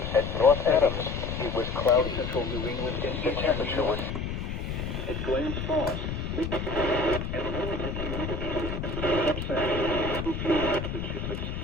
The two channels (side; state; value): left; noise; rumble, 4 dB below the sound